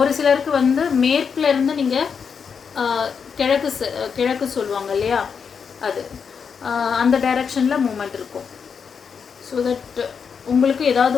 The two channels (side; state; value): right; quieter; 6.4 dB